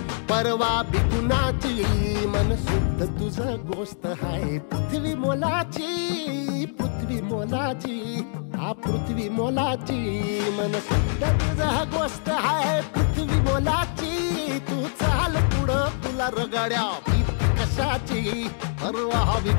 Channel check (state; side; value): silent; right; digital silence